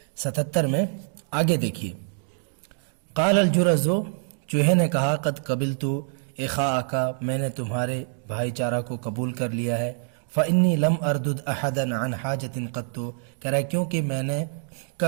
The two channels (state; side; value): silent; left; digital silence